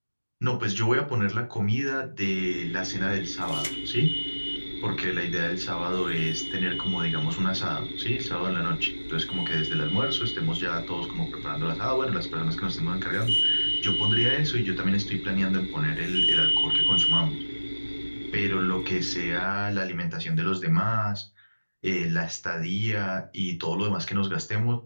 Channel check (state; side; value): inverted; both; correlation -1.00